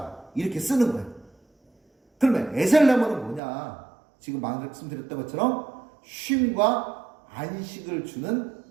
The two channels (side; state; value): left; drops out; at 3.4 s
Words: 이렇게 쓰는 거예요. 그러면 에셀나무는 뭐냐? 지금 말씀드렸던 것처럼 쉼과 안식을 주는